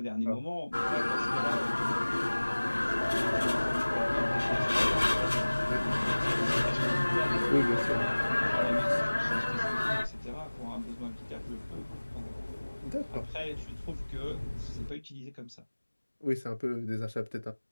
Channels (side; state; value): both; inverted; correlation -1.00